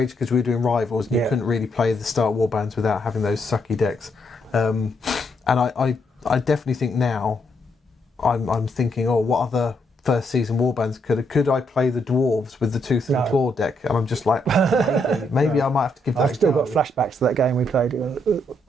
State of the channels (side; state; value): both; normal; correlation 0.76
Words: because we were doing Rivals and you couldn't really play the start warbands without having those sucky decks. And I definitely think now I'm thinking, what other first season warbands, could I play the dwarves with the tooth and claw deck? And I'm just like, maybe I might have to give that I've still got flashbacks to that game we played.